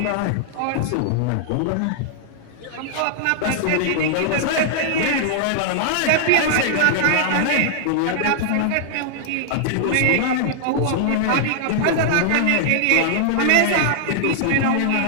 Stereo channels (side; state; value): both; different; correlation -0.01